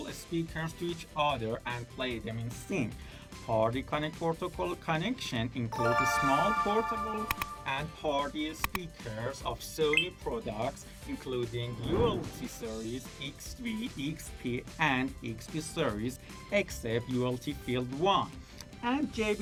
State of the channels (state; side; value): identical; both; correlation 1.00